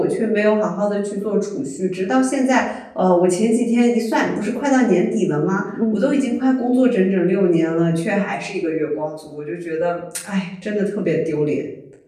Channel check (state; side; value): identical; both; correlation 1.00